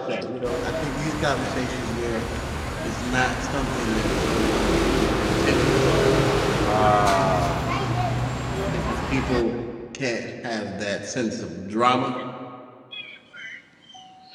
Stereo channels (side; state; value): both; identical; correlation 1.00